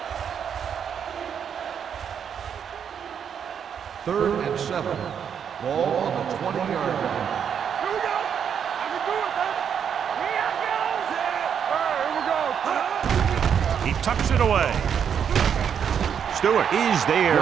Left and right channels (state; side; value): quieter; left; 7.9 dB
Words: Third and 7. Ball on the 20-yard line. Here we go. I can do it, baby. Here we go. He tucks it away. Stewart is there